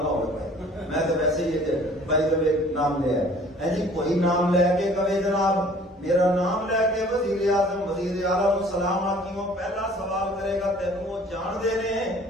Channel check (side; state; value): both; normal; correlation 0.52